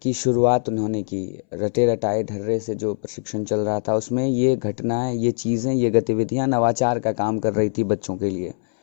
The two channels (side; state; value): right; silent; 64 dB below the other